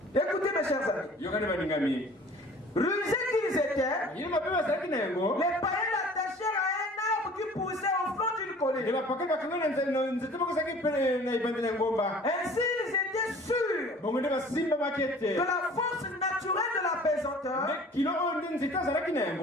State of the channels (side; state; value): both; normal; correlation 0.48